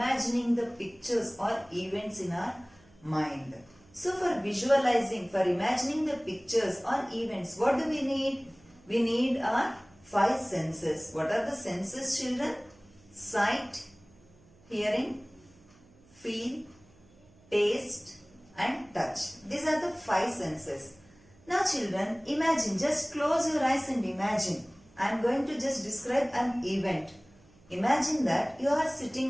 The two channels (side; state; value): right; noise; hum, 28 dB below the sound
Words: the pictures or events in our mind. So for visualizing, for imagining the pictures or events, what do we need? We need our 5 senses. What are the senses, children? Sight, hearing, feel, taste and touch. These are the 5 senses. Now children, imagine, just close your eyes and imagine. I am going to just describe an event. Imagine that you are